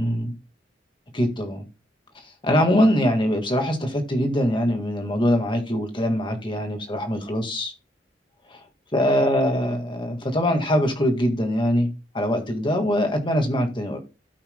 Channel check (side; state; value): both; normal; correlation 0.74